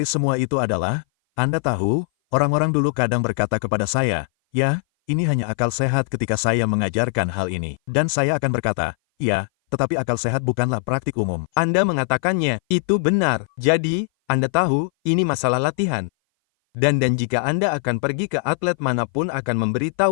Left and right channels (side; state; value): right; silent; 58 dB below the other